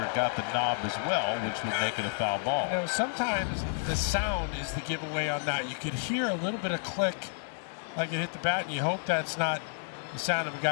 got the knob as well, which would make it a foul ball. You know, sometimes the sound is the giveaway on that. You could hear a little bit of click like it hit the bat, and you hope that's not the sound of a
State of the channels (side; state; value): right; silent; digital silence